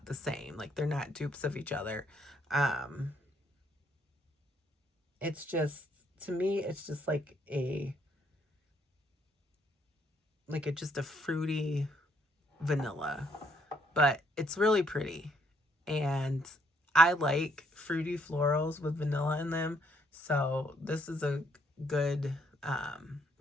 the same, like they're not dupes of each other. It's just, to me, it's just like just a fruity vanilla, but it's really pretty, and I like fruity florals with vanilla in them, so this is a good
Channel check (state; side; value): normal; both; correlation 0.69